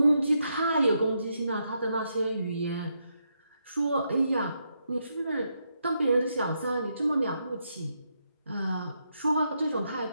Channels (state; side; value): inverted; both; correlation -0.81